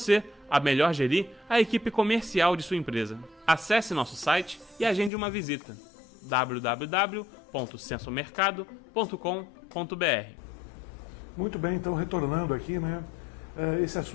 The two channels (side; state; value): right; drops out; at 5.1 s